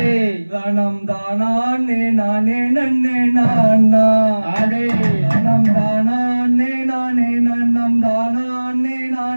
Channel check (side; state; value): both; inverted; correlation -1.00